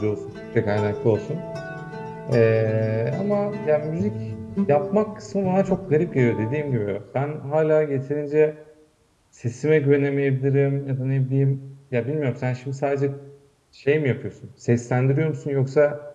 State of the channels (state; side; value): identical; both; correlation 1.00